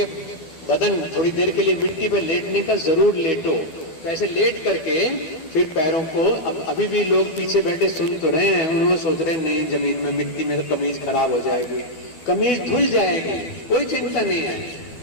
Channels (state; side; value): late; right; 12 ms